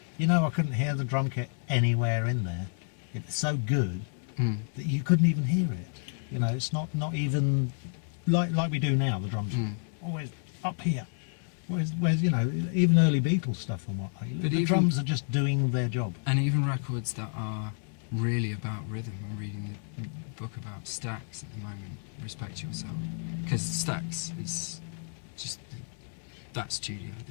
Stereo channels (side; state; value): right; silent; 58 dB below the other